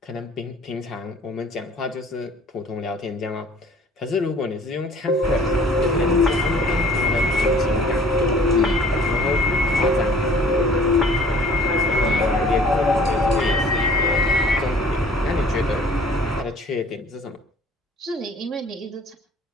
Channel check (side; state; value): both; normal; correlation 0.52